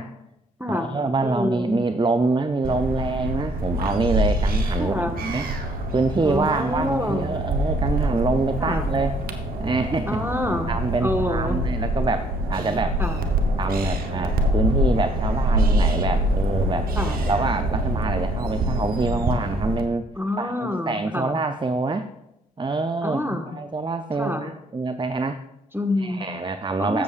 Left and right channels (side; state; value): both; normal; correlation 0.64